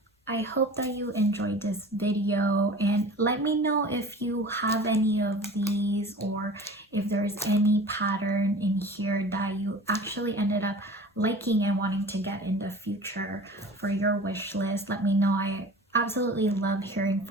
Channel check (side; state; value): both; normal; correlation 0.40